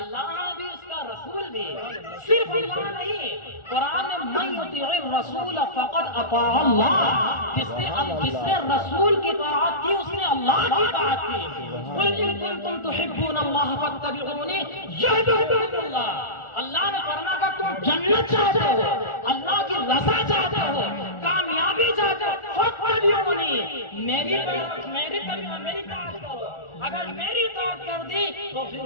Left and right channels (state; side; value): late; right; 1.4 ms